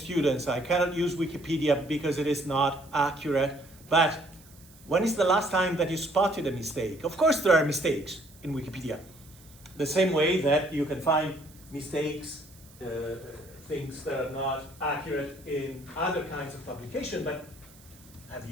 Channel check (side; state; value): right; noise; hiss, 24 dB below the sound